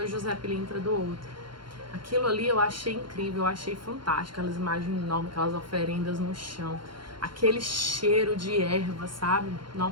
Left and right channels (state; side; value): late; left; 0.72 ms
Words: José Pilintra do outro. Aquilo ali eu achei incrível, eu achei fantástico, aquelas imagens enormes, aquelas oferendas no chão, aquele cheiro de erva, sabe?